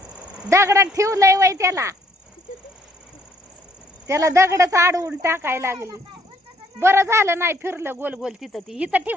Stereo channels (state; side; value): normal; both; correlation 0.66